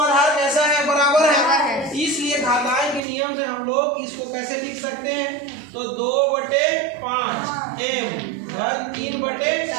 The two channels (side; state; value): left; drops out; at 3.0 s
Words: कैसा है, बराबर है। इसलिए घातांक के नियम से हम लोग इसको कैसे लिख सकते हैं, तो 2/5m धन